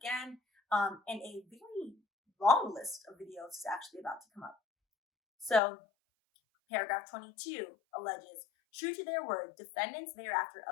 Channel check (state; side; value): drops out; right; at 5.6 s